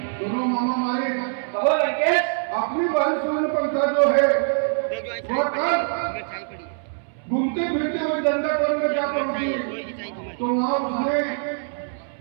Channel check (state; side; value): silent; left; 63 dB below the other